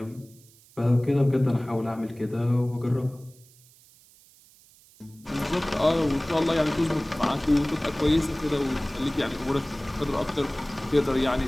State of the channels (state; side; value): noise; right; hiss, 27 dB below the sound